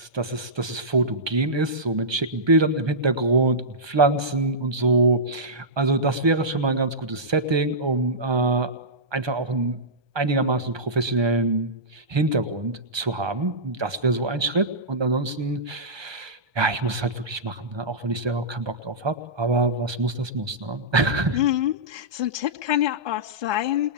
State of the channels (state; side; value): late; left; 1.2 ms